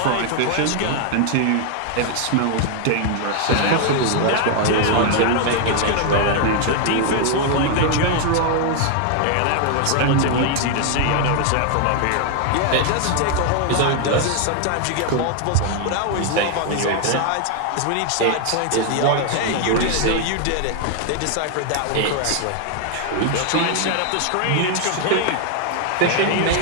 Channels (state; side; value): different; both; correlation 0.00